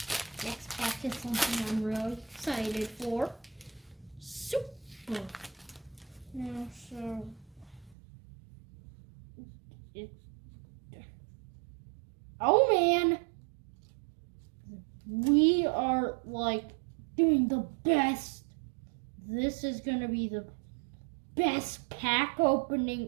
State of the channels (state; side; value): drops out; left; at 8.0 s